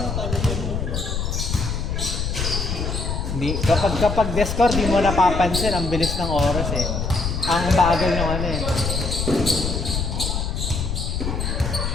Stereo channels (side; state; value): left; noise; rumble, 2 dB below the sound